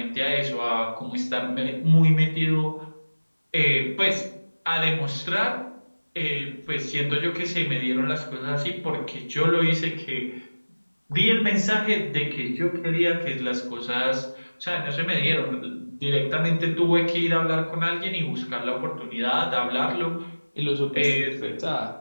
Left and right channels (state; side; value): inverted; both; correlation -1.00